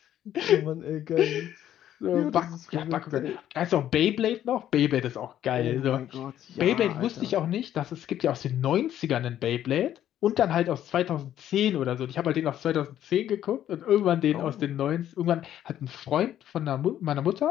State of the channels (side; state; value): right; quieter; 11.4 dB